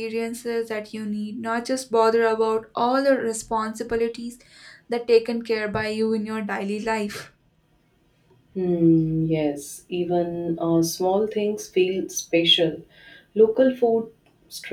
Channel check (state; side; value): identical; both; correlation 1.00